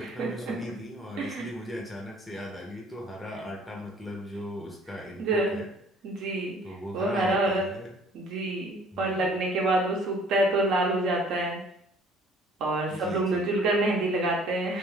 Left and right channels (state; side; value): normal; both; correlation 0.55